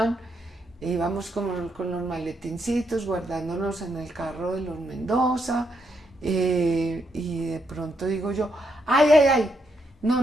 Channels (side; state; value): both; normal; correlation 0.78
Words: íbamos con los maletincitos guardándonos en el carro de los Mendoza, y de pronto digo yo, ay,